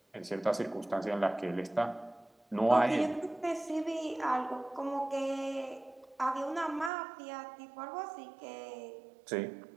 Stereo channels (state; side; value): drops out; left; at 6.9 s